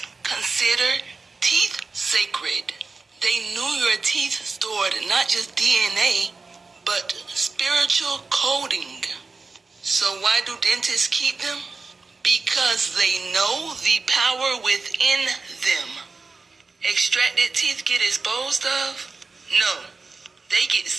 consider teeth sacred. They knew your teeth stored not just DNA, but spiritual coding. So why do dentists keep them? Because they know the power within them. Extracted teeth get disposed of? No, they get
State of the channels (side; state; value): left; quieter; 4.1 dB